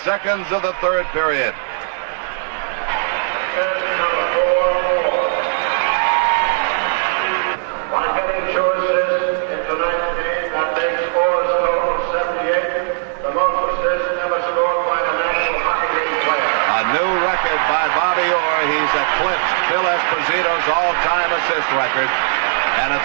of the 3rd period. By Bobby Orr, he's eclipsed Phil Esposito's all-time assist record, and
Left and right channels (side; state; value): left; silent; digital silence